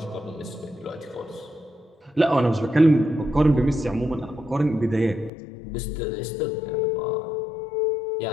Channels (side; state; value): right; drops out; at 5.3 s